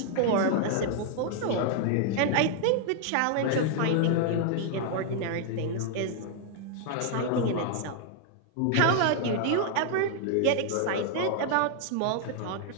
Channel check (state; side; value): different; both; correlation 0.00